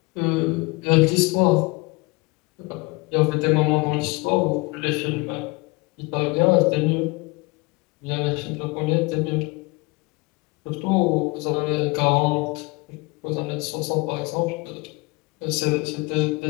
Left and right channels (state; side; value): quieter; right; 26.0 dB